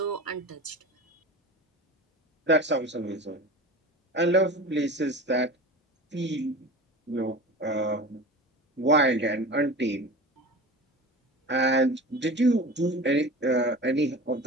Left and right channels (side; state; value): both; normal; correlation 0.34